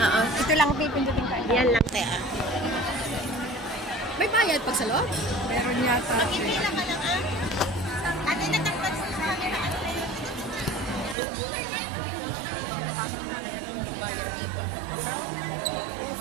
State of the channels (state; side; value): drops out; left; at 11.2 s